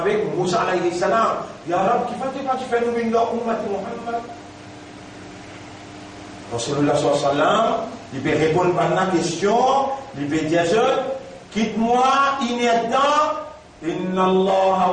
Moussa alayhi salam, Ya Rab, qui fait nous une Ummat Muhammad? Rasulullah sallallahu alayhi wa sallam, il peut répondre à la question, il peut dire, quitte-moi inattent. Inna Allah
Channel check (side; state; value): both; identical; correlation 1.00